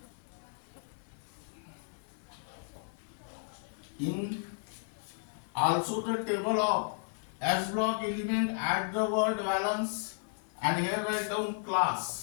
In also the table of S block element, add the word valence and here write down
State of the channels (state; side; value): silent; right; digital silence